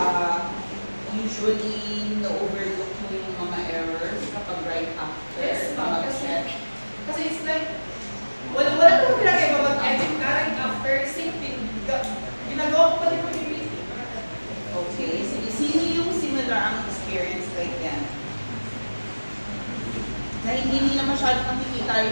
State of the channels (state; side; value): inverted; both; correlation -1.00